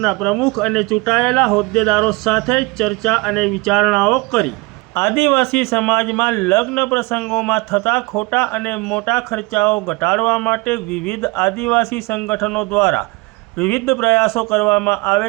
પ્રમુખ અને ચૂંટાયેલા હોદ્દેદારો સાથે ચર્ચા અને વિચારણાઓ કરી। આદિવાસી સમાજમાં લગ્ન પ્રસંગોમાં થતા ખોટા અને મોટા ખર્ચાઓ ઘટાડવા માટે વિવિધ આદિવાસી સંગઠનો દ્વારા વિવિધ પ્રયાસો કરવામાં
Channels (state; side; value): quieter; left; 25.8 dB